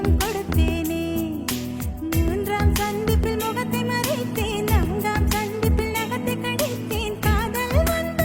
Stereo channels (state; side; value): identical; both; correlation 1.00